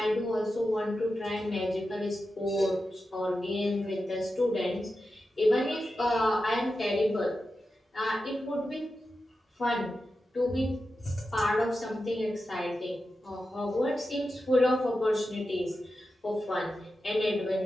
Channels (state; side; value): normal; both; correlation 0.91